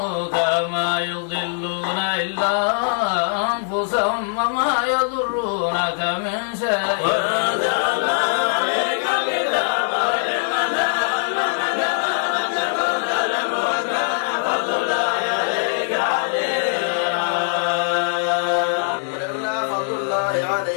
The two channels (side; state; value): right; silent; 58 dB below the other